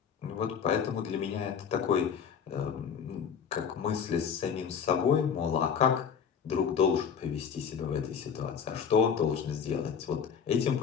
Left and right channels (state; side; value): quieter; right; 7.0 dB